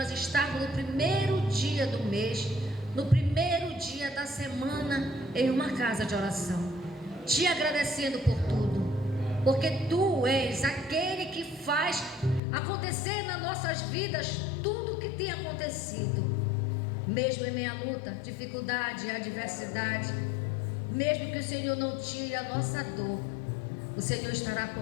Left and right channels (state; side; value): drops out; right; at 12.4 s